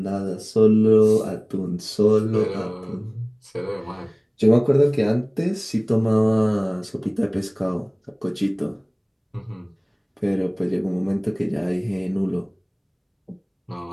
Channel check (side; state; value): both; identical; correlation 1.00